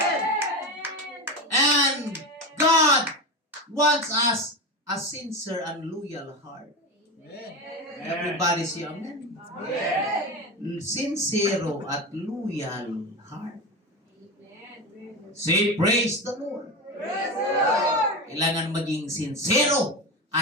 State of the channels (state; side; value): normal; both; correlation 0.21